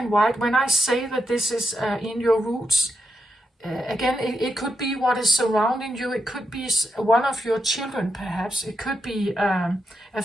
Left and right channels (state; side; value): normal; both; correlation 0.83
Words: white. When I say that this is in your roots, again, it could be what is surrounding you. It could be one of your children, perhaps. It could be a